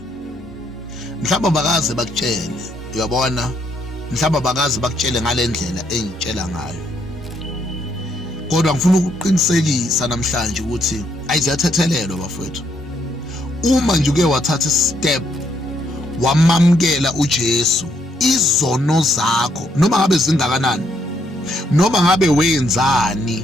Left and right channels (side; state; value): both; normal; correlation 0.73